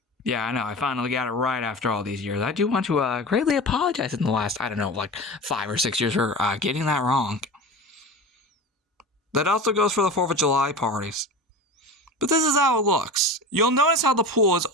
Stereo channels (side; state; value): both; normal; correlation 0.31